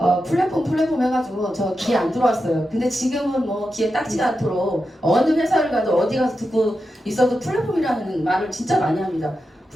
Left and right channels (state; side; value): normal; both; correlation 0.89